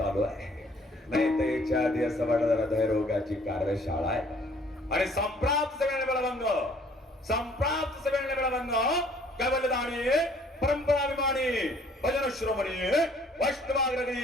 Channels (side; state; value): both; normal; correlation 0.59